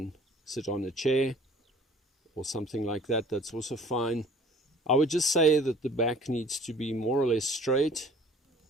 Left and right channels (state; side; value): normal; both; correlation 0.50